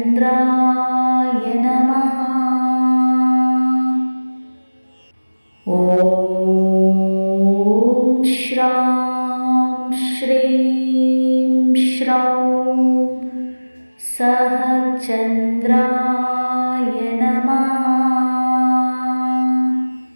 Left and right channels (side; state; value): both; inverted; correlation -1.00